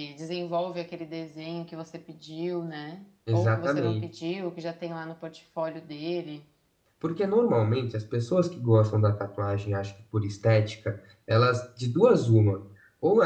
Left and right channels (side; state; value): both; identical; correlation 1.00